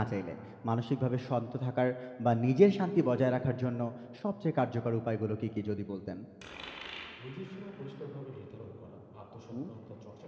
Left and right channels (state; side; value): identical; both; correlation 1.00